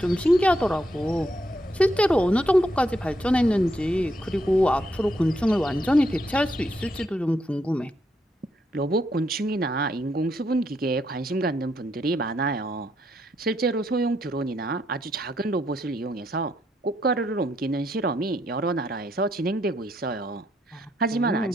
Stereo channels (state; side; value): normal; both; correlation 0.76